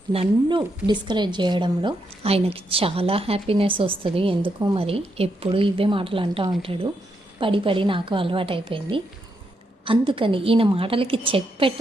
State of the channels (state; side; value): normal; both; correlation 0.80